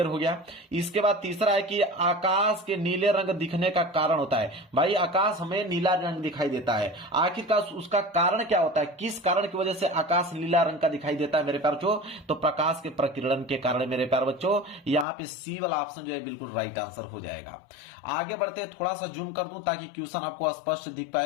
हो गया। इसके बाद तीसरा है कि आकाश के नीले रंग दिखने का कारण होता है। भाई आकाश हमें नीला रंग दिखाई देता है, आखिरकार उसका कारण क्या होता है? किस कारण की वजह से आकाश नीला रंग का दिखाई देता है मेरे प्यारे बच्चों? तो प्रकाश के प्रकीर्णन के कारण मेरे प्यारे बच्चों। यहां पे सी वाला ऑप्शन जो है बिल्कुल राइट आंसर हो जाएगा। आगे बढ़ते हैं, थोड़ा सा जूम कर दूं ताकि क्वेश्चन आपको स्पष्ट दिख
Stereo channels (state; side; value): drops out; right; at 15.1 s